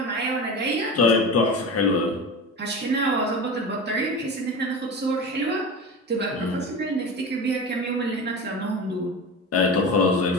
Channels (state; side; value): normal; both; correlation 0.28